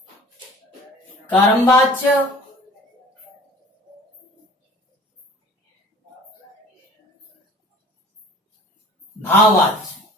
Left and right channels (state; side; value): normal; both; correlation 0.46